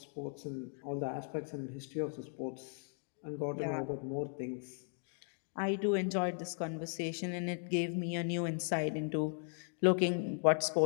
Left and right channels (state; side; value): silent; right; 53 dB below the other